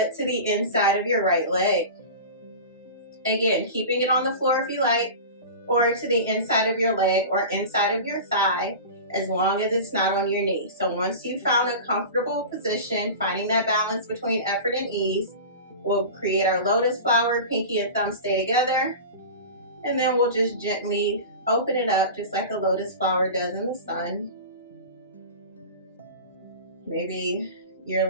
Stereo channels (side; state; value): both; inverted; correlation -0.32